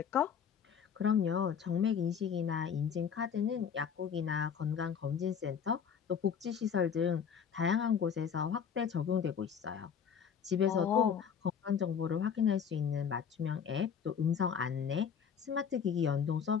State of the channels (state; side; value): quieter; right; 7.4 dB